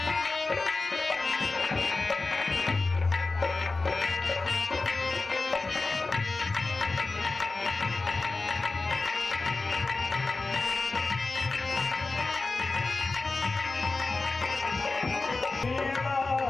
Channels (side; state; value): right; quieter; 3.6 dB